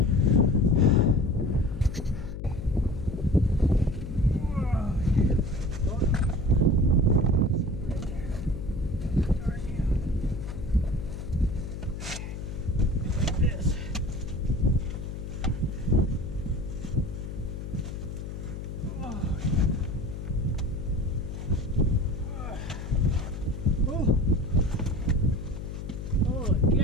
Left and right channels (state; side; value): noise; left; hum, 7 dB below the sound